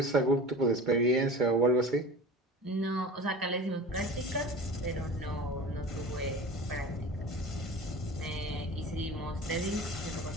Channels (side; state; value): both; normal; correlation 0.36